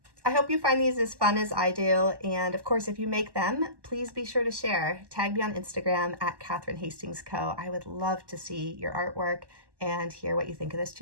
I hope you find these as fun as I do, and of course, if you make them, please be sure to share. Tag me on Instagram at Kathryn Hastings Co. I would love to see your artwork and hear what you think of this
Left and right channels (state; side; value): late; left; 1.1 ms